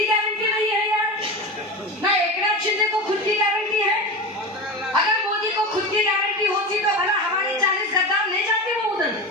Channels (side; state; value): both; normal; correlation 0.25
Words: गारंटी नहीं है यार, ना एकनाथ शिंदे को खुद की गारंटी है। अगर मोदी को खुद की गारंटी होती तो भला हमारे 40 गद्दार ले जाते वो उधर?